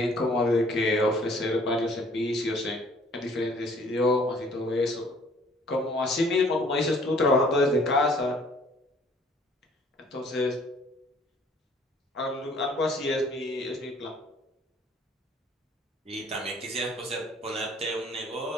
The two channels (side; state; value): both; normal; correlation 0.57